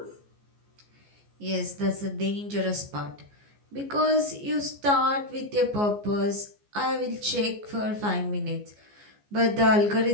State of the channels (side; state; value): left; late; 14 ms